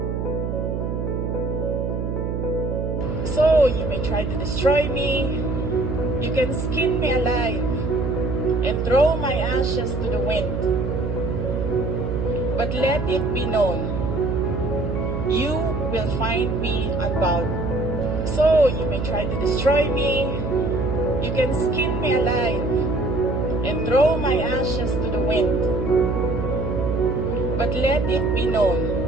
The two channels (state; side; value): noise; right; hum, 2 dB below the sound